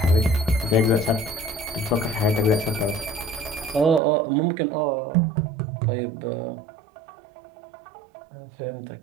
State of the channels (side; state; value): left; drops out; at 4.0 s